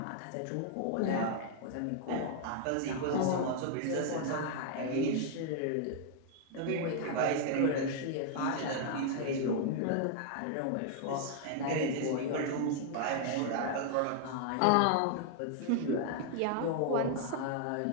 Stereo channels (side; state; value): both; different; correlation 0.00